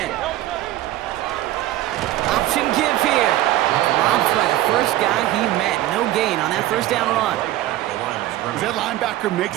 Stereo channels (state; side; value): quieter; left; 14.7 dB